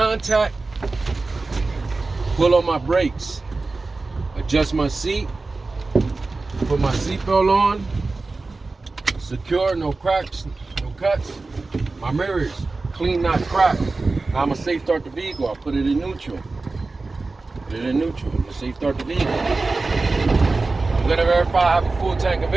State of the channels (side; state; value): left; quieter; 3.6 dB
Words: pull on my brakes, adjust my seat, put my seatbelt on, secure, no cracks, no cuts. My mirrors, clean, not cracked. Now I'm gonna safe start the vehicle. I'll put it in neutral. Put it in neutral. I'm gonna safe start the vehicle. I'm gonna verify I have a full tank of